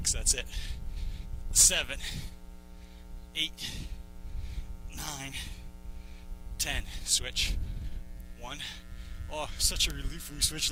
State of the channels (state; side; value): identical; both; correlation 1.00